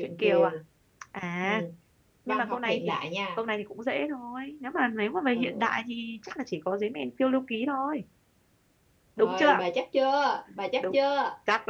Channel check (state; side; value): identical; both; correlation 1.00